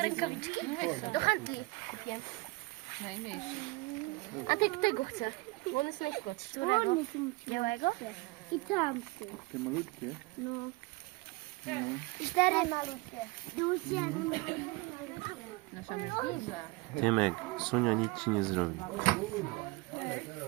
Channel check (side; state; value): left; quieter; 23.3 dB